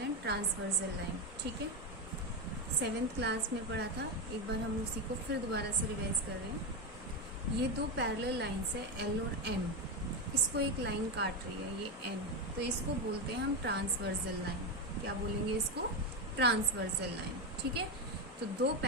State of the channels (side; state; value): both; normal; correlation 0.11